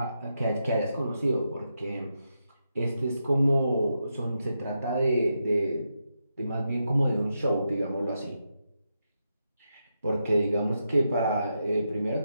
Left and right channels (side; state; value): both; inverted; correlation -0.85